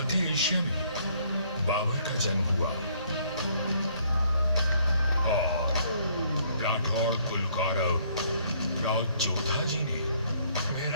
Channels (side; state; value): both; inverted; correlation -0.64